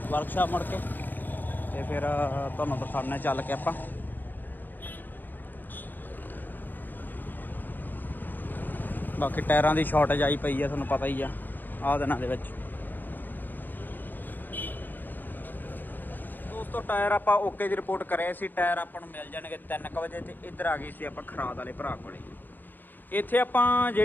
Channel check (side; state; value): right; late; 0.088 ms